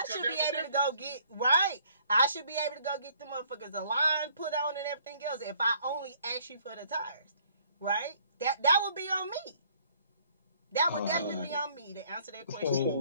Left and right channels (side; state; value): both; inverted; correlation -0.62